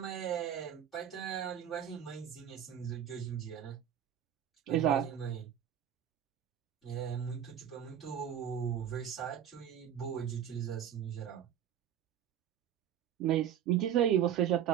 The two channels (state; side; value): quieter; left; 9.8 dB